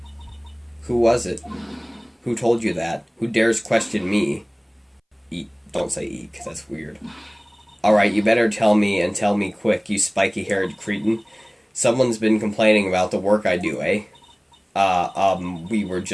Who was it? Who told you that? Who dares question me? Eat. Don't say eat, because that's weird. Alright, you better tell me, and tell me quick, you spiky-haired cretin. Someone's been complaining about the work I do, eh? We were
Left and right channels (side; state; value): both; identical; correlation 1.00